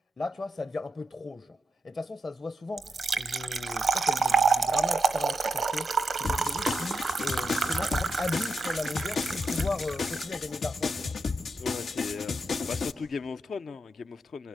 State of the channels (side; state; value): both; normal; correlation 0.85